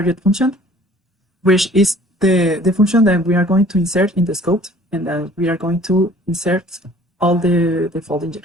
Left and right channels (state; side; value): normal; both; correlation 0.52